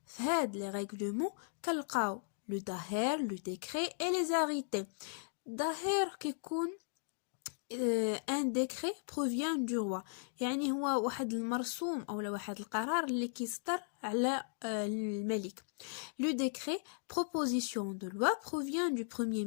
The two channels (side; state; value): right; silent; digital silence